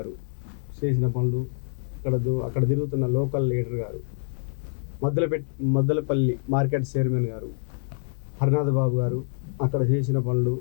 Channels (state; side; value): silent; right; 61 dB below the other